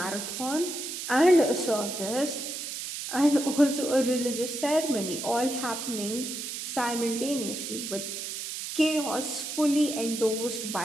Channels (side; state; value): right; noise; hiss, 6 dB below the sound